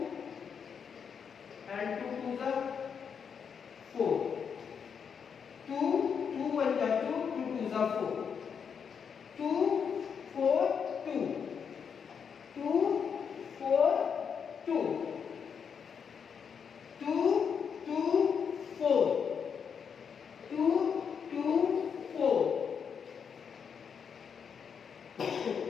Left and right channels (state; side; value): quieter; right; 6.8 dB